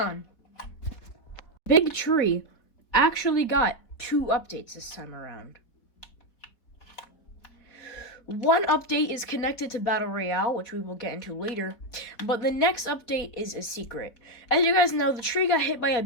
Big Tree actually got 2 updates this time around. One update is connected to Battle Royale, which we will get into later, but the next update is a secret. As you guys know, the tree got hit by a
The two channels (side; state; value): right; late; 3.8 ms